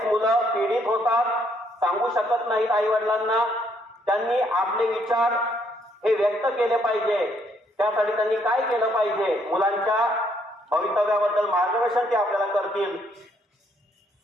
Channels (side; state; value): both; normal; correlation 0.70